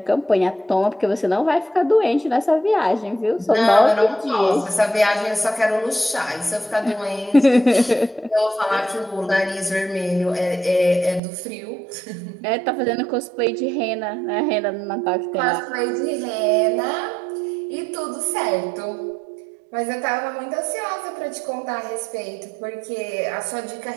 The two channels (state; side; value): drops out; left; at 11.2 s